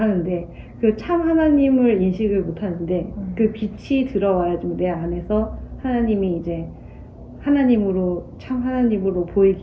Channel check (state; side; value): identical; both; correlation 1.00